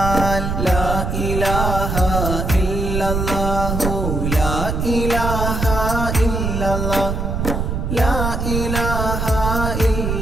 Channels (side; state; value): right; noise; rumble, 2 dB below the sound